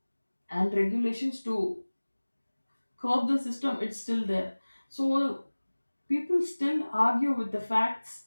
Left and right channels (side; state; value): both; inverted; correlation -1.00